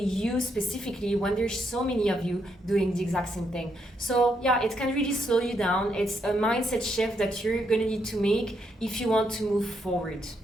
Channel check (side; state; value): both; normal; correlation 0.77